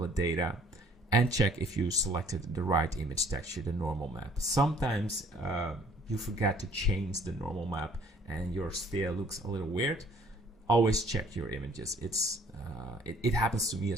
data, and check if you selected the right image texture, the normal map. Sometimes you forget to change the normal map and your sphere looks a little weird. Always check your images. It happens to me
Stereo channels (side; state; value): both; normal; correlation 0.58